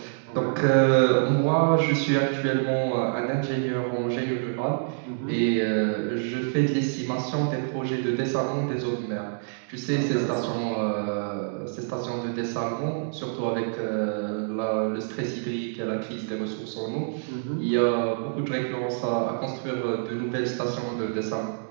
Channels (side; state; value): left; silent; digital silence